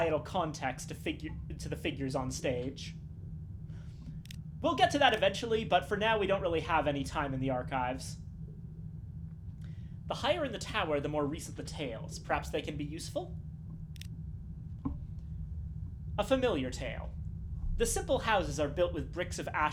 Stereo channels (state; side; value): identical; both; correlation 1.00